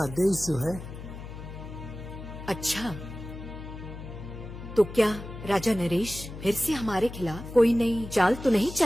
आदेश जो है। अच्छा, तो क्या राजा नरेश फिर से हमारे खिलाफ कोई नई चाल तो नहीं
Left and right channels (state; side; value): noise; left; hum, 11 dB below the sound